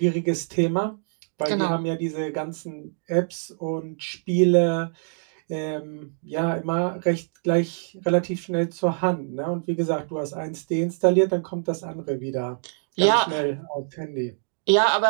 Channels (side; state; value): left; silent; digital silence